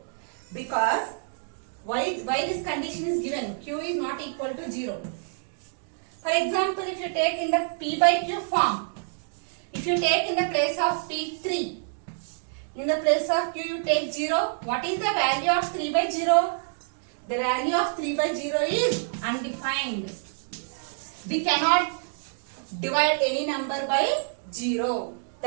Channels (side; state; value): left; silent; digital silence